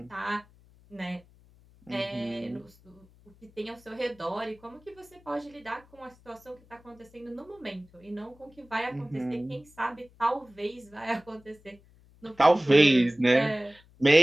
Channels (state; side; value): noise; left; hum, 27 dB below the sound